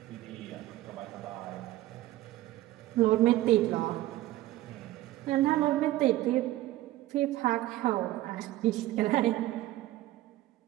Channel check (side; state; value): left; quieter; 16.0 dB